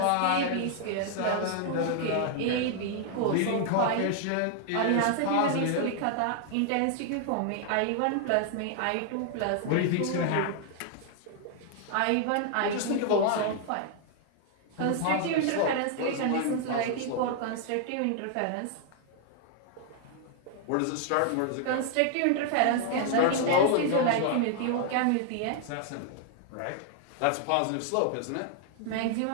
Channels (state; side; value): different; both; correlation 0.00